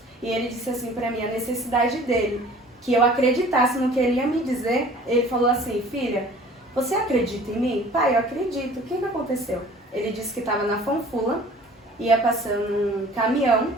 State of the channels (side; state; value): both; normal; correlation 0.48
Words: E ele disse assim para mim a necessidade dele, que eu acreditasse no que ele ia me dizer. Ele falou assim: filha, você acredita em mim? Pai, eu acredito. O que aconteceu? Ele disse que estava na Fanfula, ia passando um caminhão,